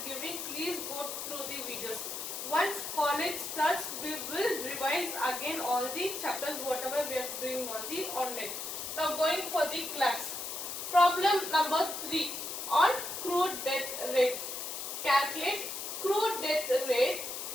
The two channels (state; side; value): noise; left; hiss, 5 dB below the sound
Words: giving. Please go through the videos. Once college starts, we will revise again all the chapters whatever we are doing on the online. Now going for the class. Problem number 3 on crude death rate. Calculate crude death rate